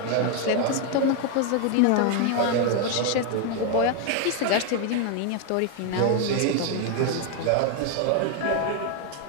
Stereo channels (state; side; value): different; both; correlation 0.01